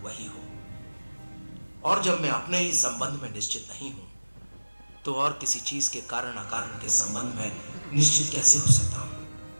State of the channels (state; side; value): inverted; both; correlation -1.00